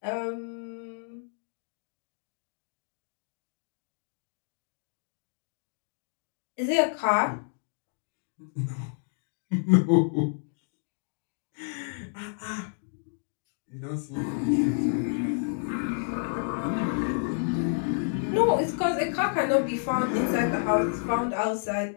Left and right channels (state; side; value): silent; right; digital silence